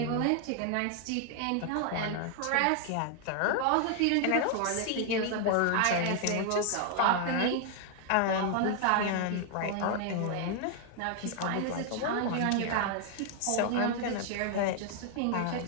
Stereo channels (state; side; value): different; both; correlation 0.00